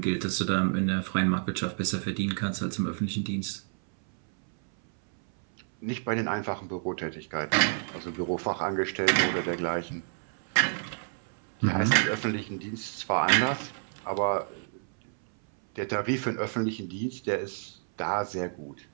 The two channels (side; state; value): left; silent; 58 dB below the other